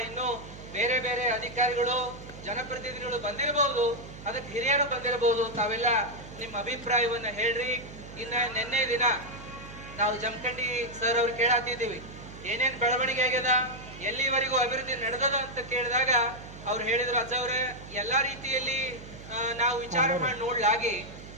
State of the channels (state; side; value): noise; right; hum, 15 dB below the sound